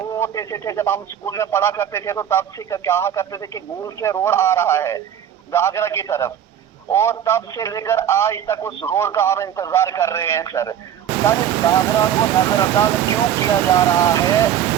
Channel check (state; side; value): quieter; left; 9.8 dB